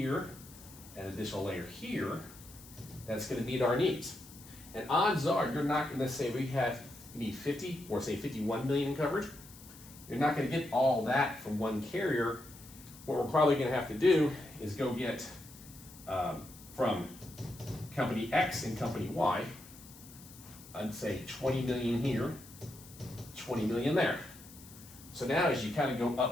and an additional layer here that's going to meet our needs. And odds are you're not going to say you need 50 or say 51 million in coverage. You're not going to get all that from one carrier. What we're probably going to have to do is go get from company X and company Y, I'd say 20 million here, 20 million there. So now as you kind of go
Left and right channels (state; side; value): noise; left; hiss, 19 dB below the sound